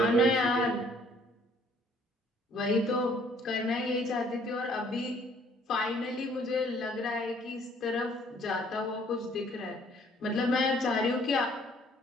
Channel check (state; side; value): normal; both; correlation 0.60